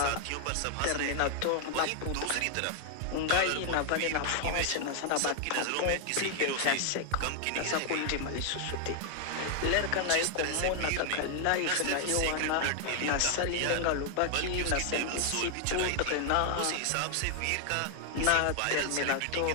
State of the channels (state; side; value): different; both; correlation 0.00